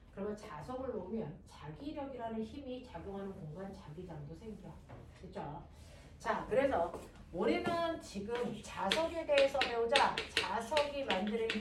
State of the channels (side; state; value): both; identical; correlation 1.00